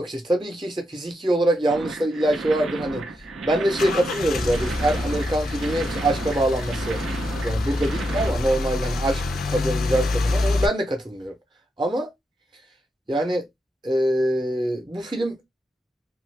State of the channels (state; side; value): normal; both; correlation 0.84